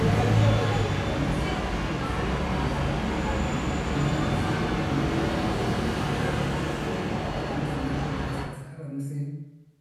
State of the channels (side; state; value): both; identical; correlation 1.00